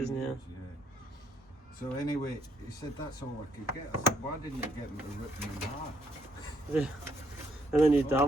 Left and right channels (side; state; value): both; normal; correlation 0.71